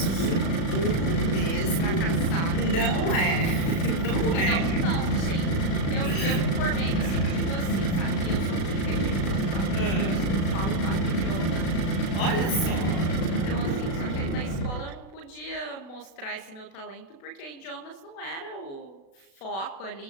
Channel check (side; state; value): right; late; 36 ms